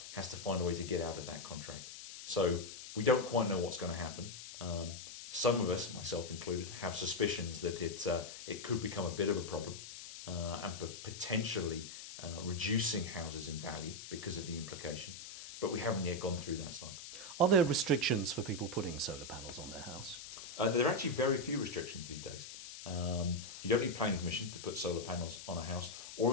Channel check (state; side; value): noise; left; hiss, 11 dB below the sound